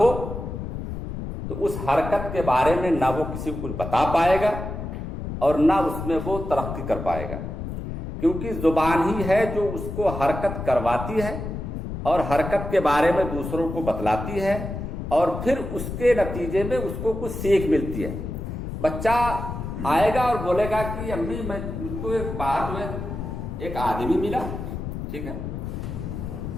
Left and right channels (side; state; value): left; noise; rumble, 6 dB below the sound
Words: तो उस हरकत के बारे में ना वो किसी को कुछ बता पाएगा और ना उसमें वो तरक्की कर पाएगा, क्योंकि जुबान ही है जो उसको हरकत करवाती है और हरकत के बारे में दूसरों को बतलाती है और फिर उसके नतीजे में उसको कुछ सीख मिलती है। बच्चा आएगा और बोलेगा कि अम्मी मुझको एक बाहर में एक आदमी मिला, ठीक है,